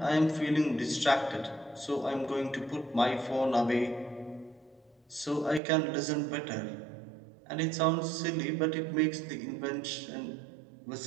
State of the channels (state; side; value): drops out; left; at 5.6 s